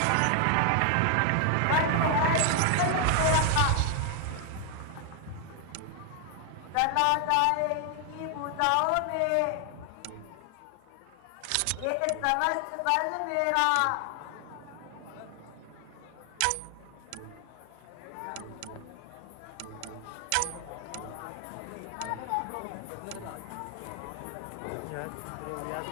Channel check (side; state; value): both; different; correlation 0.00